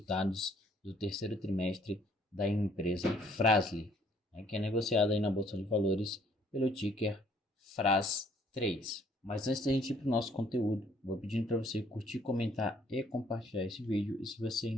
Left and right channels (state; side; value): normal; both; correlation 0.62